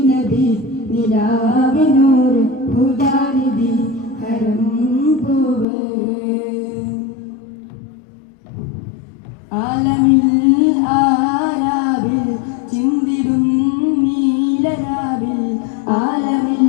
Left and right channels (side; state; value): right; drops out; at 5.7 s